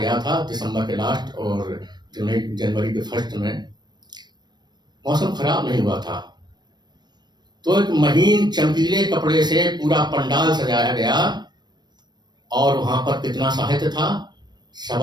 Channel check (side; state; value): left; late; 0.21 ms